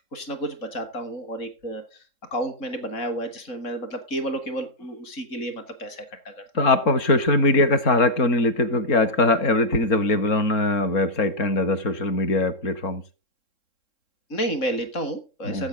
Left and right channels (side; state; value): right; late; 3.7 ms